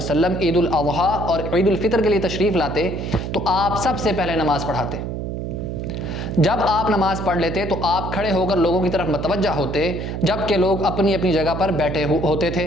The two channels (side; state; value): right; noise; hum, 5 dB below the sound